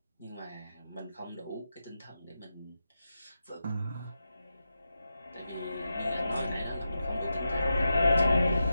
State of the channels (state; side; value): inverted; both; correlation -0.88